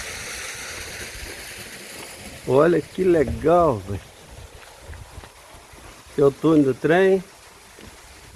Olha que legal, velho. Aqui é o túnel do trem.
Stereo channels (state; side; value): identical; both; correlation 1.00